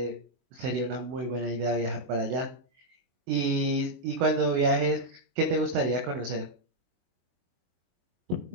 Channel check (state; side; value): late; left; 22 ms